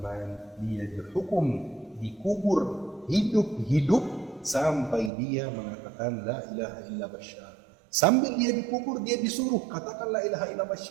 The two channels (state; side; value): drops out; left; at 5.1 s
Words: dia dihukum, dikubur hidup-hidup sampai dia mengatakan La ilaha illa Bashar. Sambil dia dikubur, dia disuruh katakan la ilaha illallah